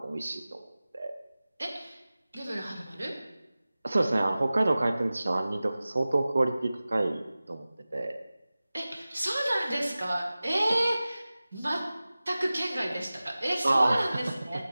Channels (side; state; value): both; inverted; correlation -0.97